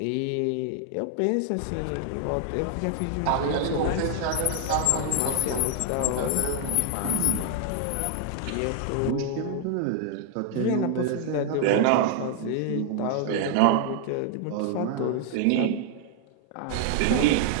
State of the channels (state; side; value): different; both; correlation 0.00